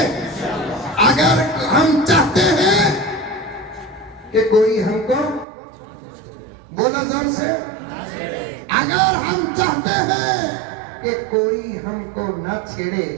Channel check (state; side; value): drops out; left; at 5.5 s